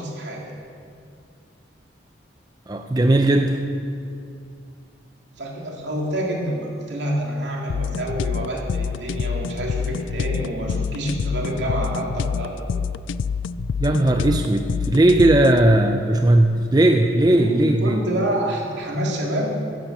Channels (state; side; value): normal; both; correlation 0.74